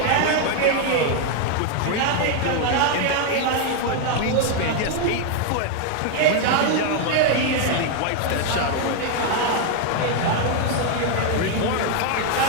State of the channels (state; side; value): different; both; correlation 0.01